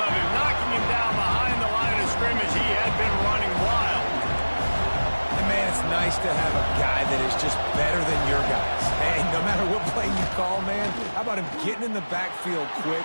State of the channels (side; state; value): both; inverted; correlation -1.00